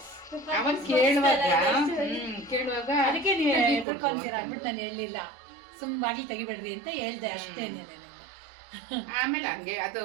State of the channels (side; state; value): left; drops out; at 3.9 s